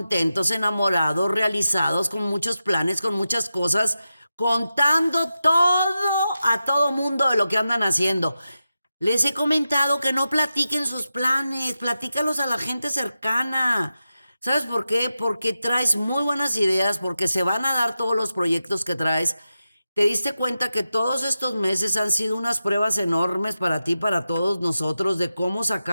enamorados, realizados, con muchos planes, con muchas cosas, contando todo a todo mundo de lo que andan haciendo. Les he comentado que no platiquen sus planes, platícalos a la gente cercana. ¿Sabes por qué? Porque traes muy buenas ideas, porque se van a dar todos los proyectos que traes. ¿Te diste cuenta que todos estos meses han sido unas pruebas enormes para ti, para todos nosotros, de cómo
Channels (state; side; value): inverted; both; correlation -0.92